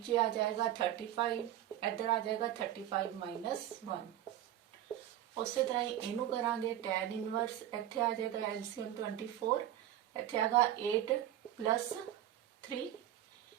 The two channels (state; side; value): quieter; left; 12.3 dB